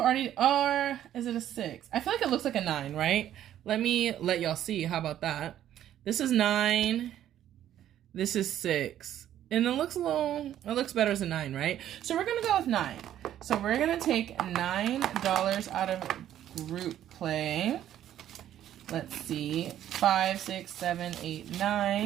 already, or is it a 6? I feel like it looks like a 9, right? Let me let y'all see. How about that? This is 9. This is 6. And it looks better as a 9, right? So we're gonna go with 9. So we're gonna take $9 out of group play. Let's see, 5, 6, 7, 8,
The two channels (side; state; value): left; quieter; 11.5 dB